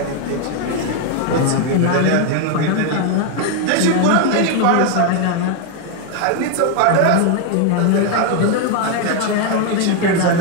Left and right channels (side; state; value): both; different; correlation 0.01